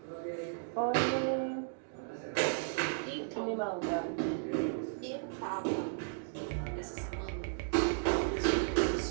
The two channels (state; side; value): silent; left; digital silence